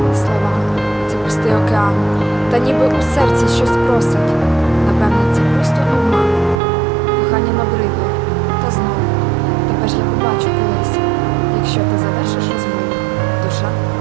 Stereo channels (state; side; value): drops out; left; at 6.6 s